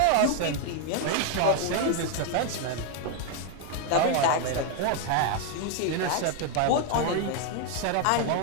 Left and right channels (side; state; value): both; different; correlation 0.01